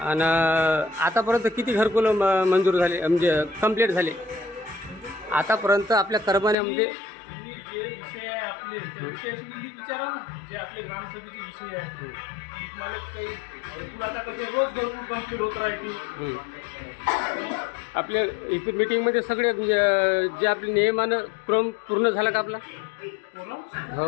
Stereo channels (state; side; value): drops out; right; at 6.6 s